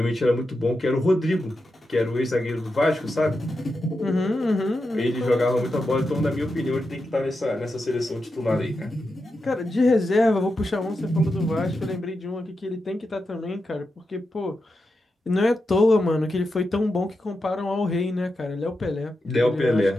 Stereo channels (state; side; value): normal; both; correlation 0.88